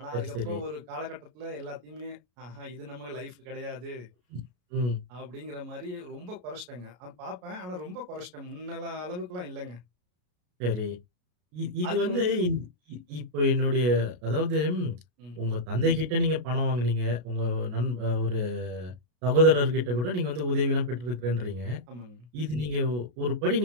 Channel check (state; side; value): late; left; 33 ms